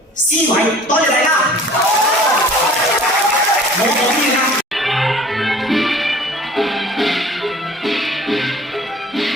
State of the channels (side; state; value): both; normal; correlation 0.48